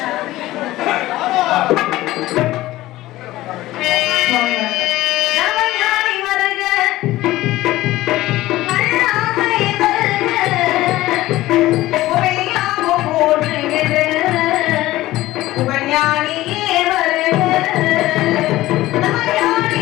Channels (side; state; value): right; quieter; 16.6 dB